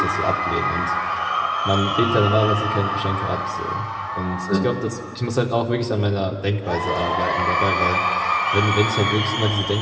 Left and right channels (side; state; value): both; identical; correlation 1.00